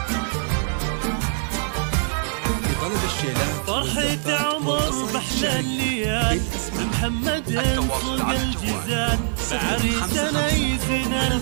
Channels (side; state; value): left; silent; 63 dB below the other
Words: فرحة عمر بحلى الليال محمد صوق الجزال بعريسنا يزين